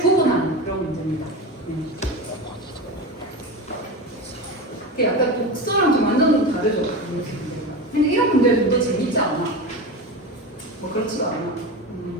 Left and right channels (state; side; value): normal; both; correlation 0.24